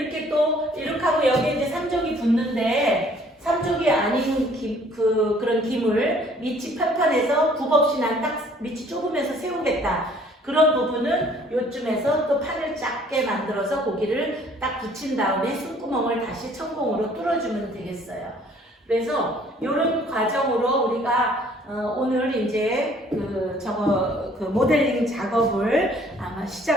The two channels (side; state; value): both; normal; correlation 0.58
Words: 또 이렇게 하고 여기에 이제 3족이 붙는데 삼족이 아닌 그런 김을 밑이 편편해서 굽 없이 난 딱 밑이 좁으면서 세우겠다. 그런 부분은 요쯤에서 또 판을 작게 만들어서 고기를 딱 붙인 다음에 숨구멍을 다시 천공으로 뚫어주면 되겠어요. 그래서 이런 과정으로 우리가 오늘 이제 그 모델링 작업을 아마